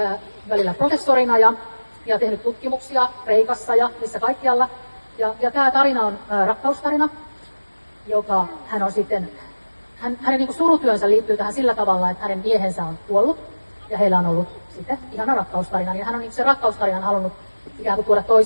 välillä professorina ja tehnyt tutkimuksia Kreikassa ja missä kaikkialla. Ja tämä tarina on rakkaustarina, joka hän on sitten, hänen niin kuin surutyönsä liittyy tähän sillä tavalla, että hänen miehensä on kuollut ja heillä on ollut sitten ihana rakkaustarina. Ja hän on niin se rakkaustarinan halunnut ikään kuin tuoda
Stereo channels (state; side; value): inverted; both; correlation -1.00